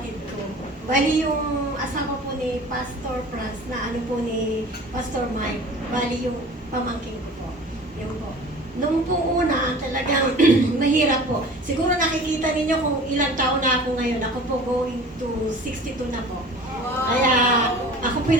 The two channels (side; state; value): both; normal; correlation 0.42